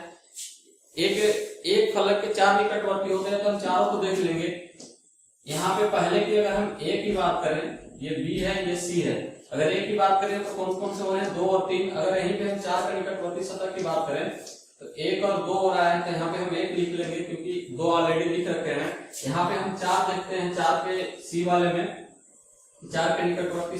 एक फलक के 4 निकटवर्ती होते हैं, तो हम चारों को देख लेंगे। यहाँ पे पहले की अगर हम ए की बात करें, ये बी है, ये सी है। अगर ए की बात करें तो कौन कौन से हो रहे हैं, 2 और 3। अगर यहीं पे हम 4 का निकटवर्ती सतह की बात करें तो 1 और 2 हो रहा है, तो यहाँ पे हम 1 लिख लेंगे क्योंकि 2 ऑलरेडी लिख रखे हैं। यहाँ पे हम 4 देखते हैं, 4 के सी वाले में 4 के निकटवर्ती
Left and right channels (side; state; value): both; identical; correlation 1.00